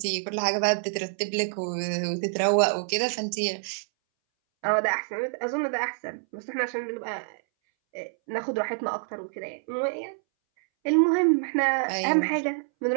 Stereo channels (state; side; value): silent; left; 60 dB below the other